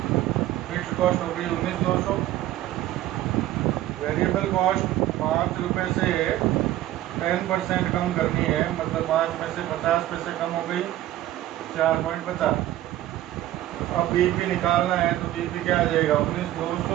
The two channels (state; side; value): quieter; left; 14.2 dB